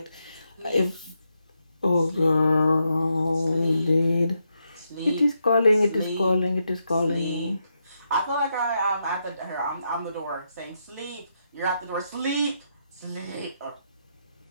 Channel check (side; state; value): both; inverted; correlation -0.82